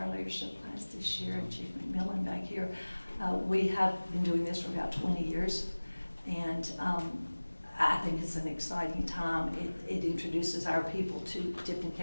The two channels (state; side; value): inverted; both; correlation -1.00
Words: leadership class this year, and Chief McMillan back here. We have been doing this for about 20 years, and I think it's an exciting time. It introduces our people to Tipton